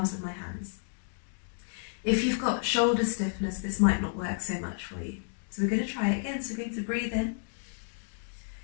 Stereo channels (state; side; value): silent; right; digital silence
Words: of my hands. If you've got shoulder stiffness, this might not work so much for you. So we're going to try it again. So we're going to breathe in